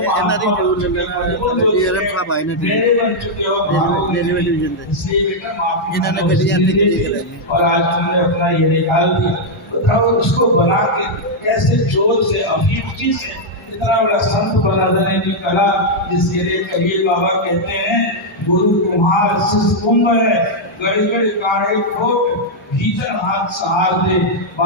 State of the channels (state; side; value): normal; both; correlation -0.03